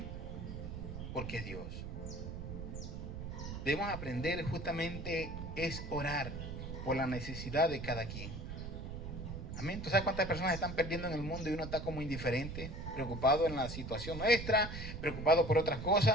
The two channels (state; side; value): noise; right; rumble, 7 dB below the sound